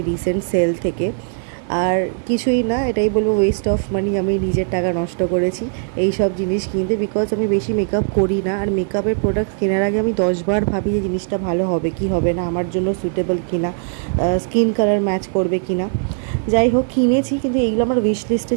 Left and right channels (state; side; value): silent; left; 66 dB below the other